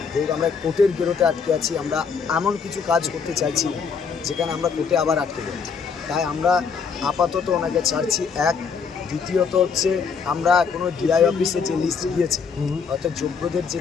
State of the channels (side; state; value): right; quieter; 5.8 dB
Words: যেহেতু আমরা কোর্টের গেরোতে আটকে আছি। আমরা এমন কিছু কাজ করতে চাইছি না যেখানে আমরা কোর্টে আবার আটকে যাই, তাই আমরা আপাতত ওনাকে ছাড়ছি। এক, দ্বিতীয়ত হচ্ছে আমরা এখনও ডিআই অফিসে যে লিস্ট গিয়েছে, অর্থাৎ যোগ্যদের যে